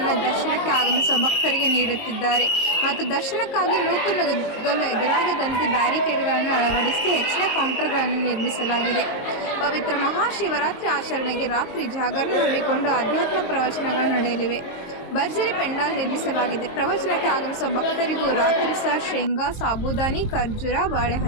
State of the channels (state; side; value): late; right; 22 ms